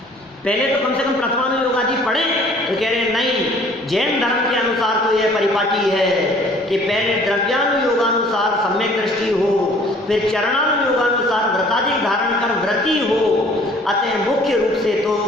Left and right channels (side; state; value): both; normal; correlation 0.54